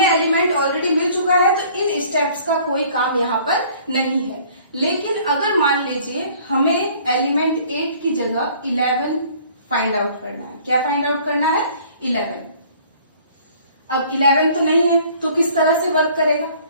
एलिमेंट ऑलरेडी मिल चुका है, तो इन स्टेप्स का कोई काम यहाँ पर नहीं है। लेकिन अगर मान लीजिए हमें एलिमेंट 8 की जगह 11 फाइंड आउट करना है, क्या फाइंड आउट करना है 11। अब 11 तो नहीं है तो किस तरह से वर्क करेगा,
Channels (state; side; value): inverted; both; correlation -0.54